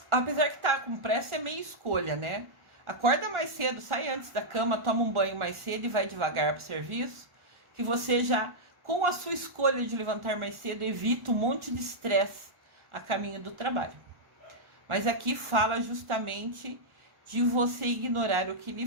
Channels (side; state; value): left; late; 1.4 ms